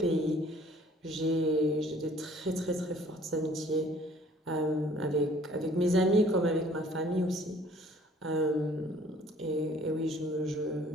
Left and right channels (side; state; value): both; normal; correlation 0.55